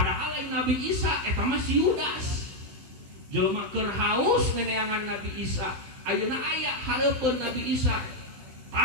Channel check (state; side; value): late; left; 16 ms